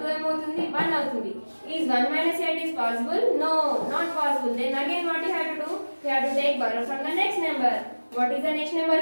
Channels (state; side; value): inverted; both; correlation -1.00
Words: 2 ఏమవుతుంది? 1 అవుతుంది. Is 1 minus 8 is possible? No, not possible. Then again what you have to do? You have to take borrow from the next number. What is the next number